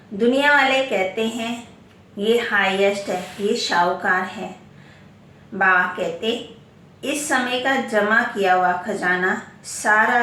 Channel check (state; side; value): identical; both; correlation 1.00